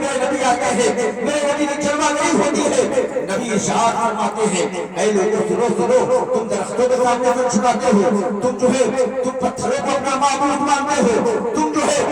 میرے نبی آتے ہیں، میرے نبی کی جلوہ گری ہوتی ہے۔ نبی ارشاد فرماتے ہیں اے لوگوں سنو سنو، تم درختوں کے سامنے سر جھکاتے ہو، تم جو ہے تم پتھروں کو اپنا معبود مانتے ہو، تم جو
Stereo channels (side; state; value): both; identical; correlation 1.00